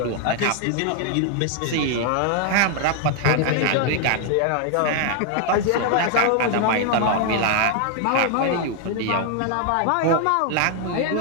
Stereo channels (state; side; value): different; both; correlation 0.00